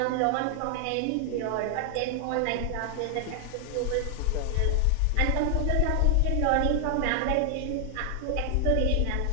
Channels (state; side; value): different; both; correlation 0.00